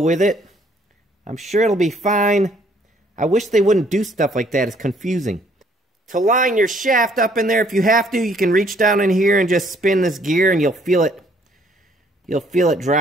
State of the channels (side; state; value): both; normal; correlation 0.63